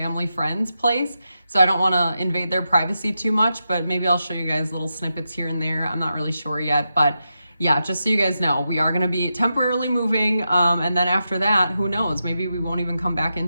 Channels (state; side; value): inverted; both; correlation -0.88